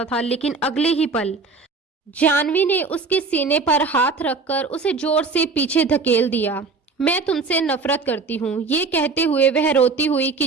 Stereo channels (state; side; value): quieter; left; 4.3 dB